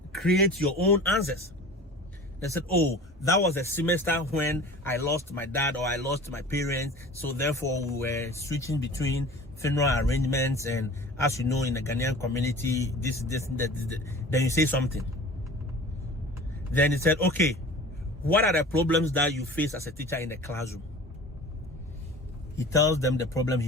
create your own answers. They said, oh, that was a semester when I lost my dad or I lost my parents. So therefore we were switching between funeral arrangements, and as you know, in the Ghanaian community, that. Then you say something. Then he said, okay, what are the problems that you face as a teacher in the classroom? He tells them the problem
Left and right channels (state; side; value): normal; both; correlation 0.40